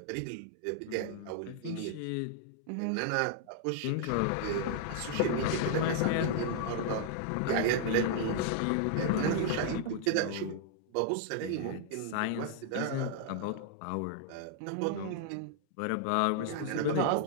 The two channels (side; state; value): both; different; correlation 0.00